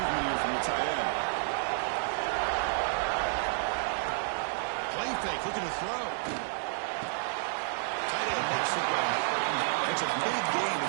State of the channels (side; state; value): left; silent; digital silence